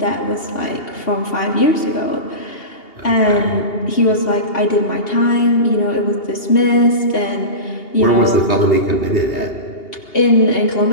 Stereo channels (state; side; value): late; right; 2.8 ms